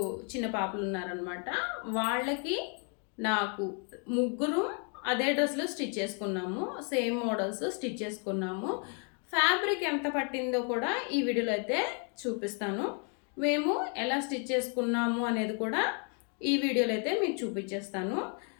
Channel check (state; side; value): quieter; right; 40.0 dB